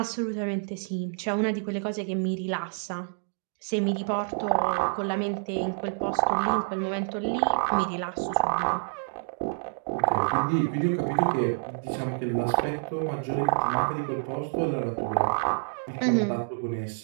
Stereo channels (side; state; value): left; silent; digital silence